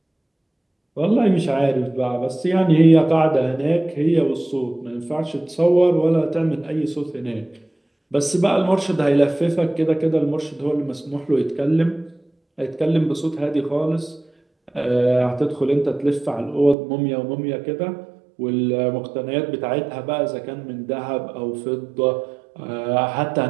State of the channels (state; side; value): drops out; left; at 16.8 s